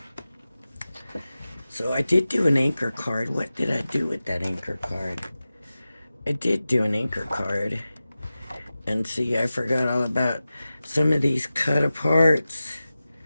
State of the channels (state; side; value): inverted; both; correlation -0.95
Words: So I did do an anchor card. What did I do with that anchor card? I did do an anchor card. And see, I forgot all about some of these cut aparts.